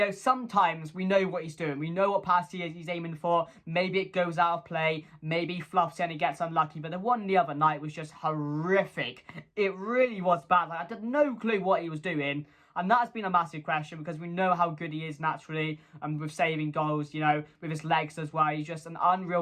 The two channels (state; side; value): identical; both; correlation 1.00